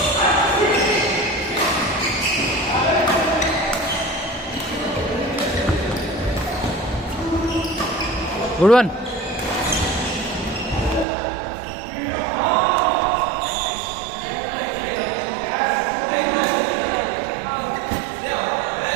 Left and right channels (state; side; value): drops out; left; at 11.1 s